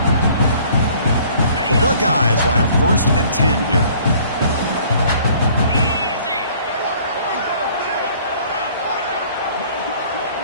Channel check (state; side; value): inverted; both; correlation -0.55